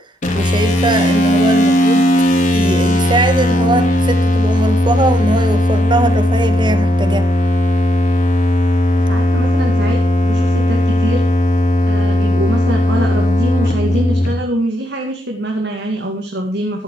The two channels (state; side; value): normal; both; correlation 0.78